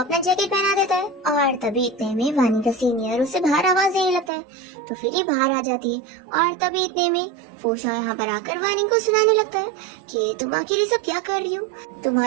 जैकेट पहना देता है और तभी इतने में वार्निंग का सीनियर उसे बाहर आवाज देने लगता है। तो फिर ये बाहर आ जाती है और तभी इतने में फूशा यहाँ पर आकर वार्निंग को सुनाने लगता है कि तुम आखिर ये सब क्या कर रही हो,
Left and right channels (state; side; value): drops out; left; at 4.3 s